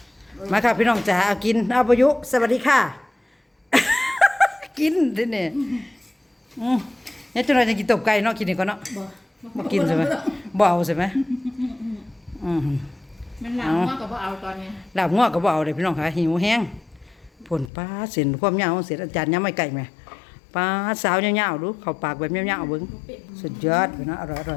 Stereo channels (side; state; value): right; drops out; at 17.7 s